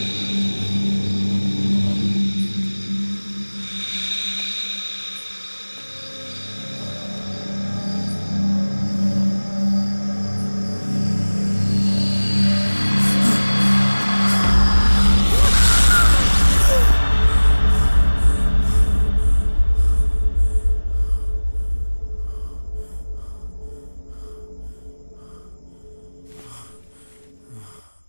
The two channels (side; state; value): both; inverted; correlation -1.00